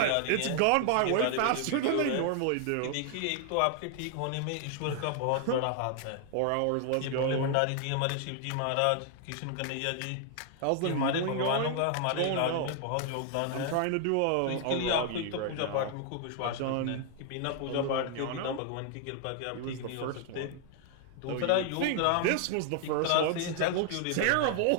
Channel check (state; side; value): different; both; correlation 0.00